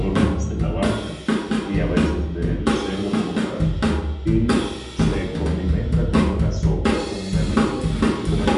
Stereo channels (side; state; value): both; identical; correlation 1.00